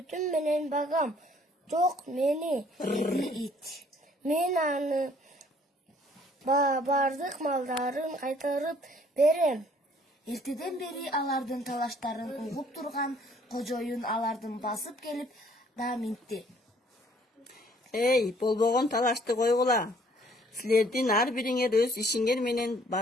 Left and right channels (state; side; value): normal; both; correlation 0.60